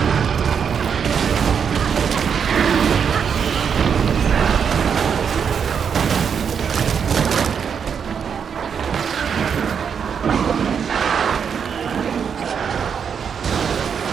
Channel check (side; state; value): left; quieter; 7.0 dB